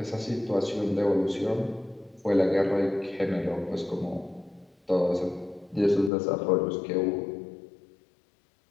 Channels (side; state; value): right; drops out; at 6.1 s